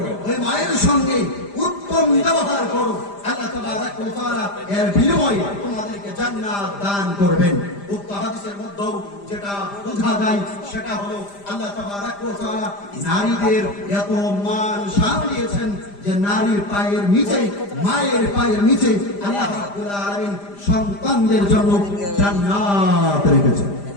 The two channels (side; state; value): right; late; 5.0 ms